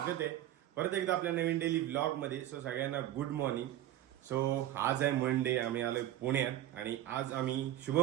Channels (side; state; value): left; quieter; 13.1 dB